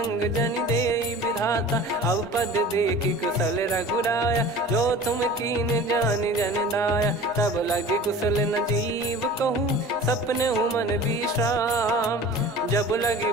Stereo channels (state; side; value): normal; both; correlation 0.40